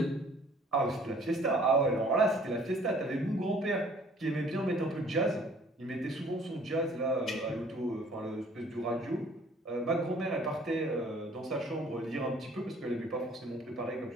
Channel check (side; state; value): both; normal; correlation 0.55